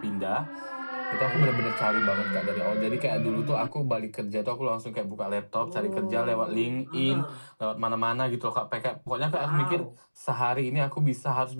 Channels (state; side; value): inverted; both; correlation -1.00